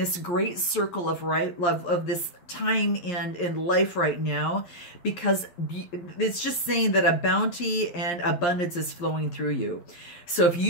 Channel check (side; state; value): right; late; 11 ms